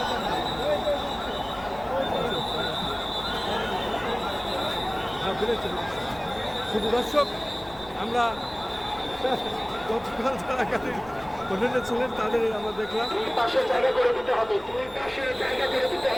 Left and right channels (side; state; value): left; noise; rumble, 21 dB below the sound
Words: শুধু দর্শক, আমরা গতকাল যারা গাড়ির হোটেলে ছিলেন তাদের আমরা দেখলাম পাশে জায়গা করে দিতে হবে, দুই পাশে জায়গা করে দিতে